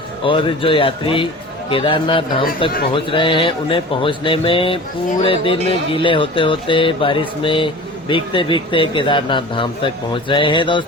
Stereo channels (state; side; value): normal; both; correlation 0.38